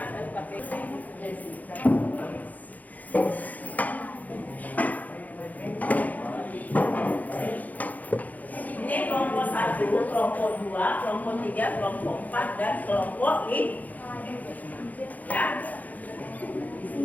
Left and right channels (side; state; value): right; late; 0.079 ms